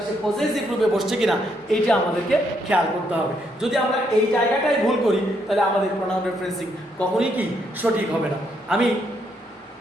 সে পজেসিভ রূপে বসছে কিনা, এইটা আমাদেরকে খেয়াল করতে হবে। যদি আমরা এই জায়গাটাই ভুল করি তাহলে আমাদের প্রোনাউন রেফারেন্সিং কখনোই কি সঠিক হবে না। আমি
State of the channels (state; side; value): normal; both; correlation 0.75